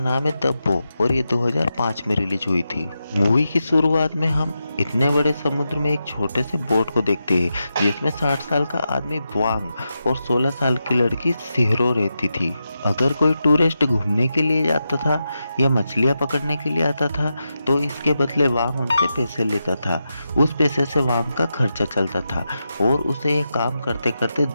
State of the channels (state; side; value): inverted; both; correlation -0.88